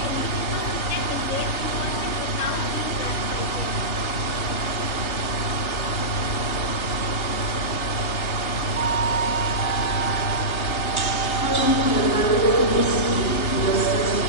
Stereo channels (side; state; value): right; late; 3.4 ms